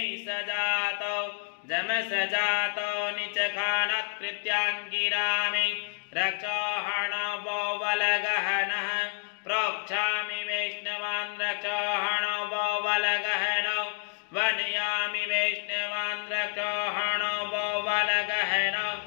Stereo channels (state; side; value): silent; right; digital silence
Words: सजातो जमसजातो निचखानत्कृत्याङ्गिरामि रक्षोहणवो वलगहनः प्रोक्षामि वैष्णवान् रक्षोहणवो वलगहनो वनयामि वैष्णवान् रक्षोहणवो वलगहनो